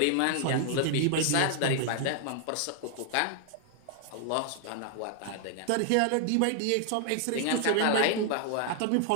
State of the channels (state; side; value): different; both; correlation 0.00